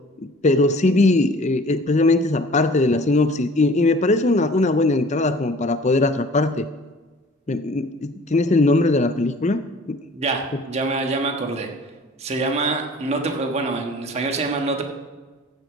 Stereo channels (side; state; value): both; normal; correlation 0.49